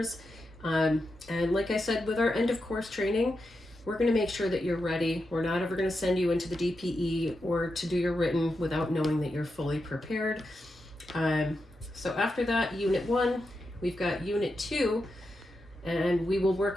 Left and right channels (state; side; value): normal; both; correlation 0.87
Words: And like I said, with our end of course training, we're going to make sure that you're ready. We're not ever going to send you into the DPE or to do your written without knowing that you're fully prepared. So after that, Unit 1, we've got Unit 2, and we will